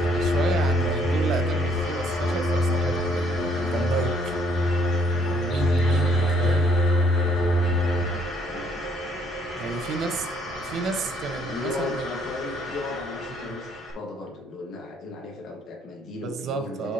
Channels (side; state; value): both; normal; correlation 0.66